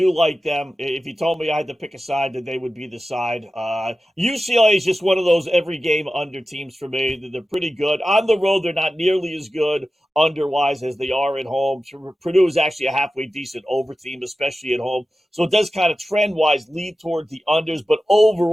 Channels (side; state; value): both; normal; correlation 0.94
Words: like them. If you told me I had to pick a side, that they would be the side. UCLA is just one of those every game under teams for me. They're pretty good. On the road, they're not nearly as good under-wise as they are at home. Purdue is actually a halfway decent over team, especially at home. So it does kind of trend-wise lead toward the unders. But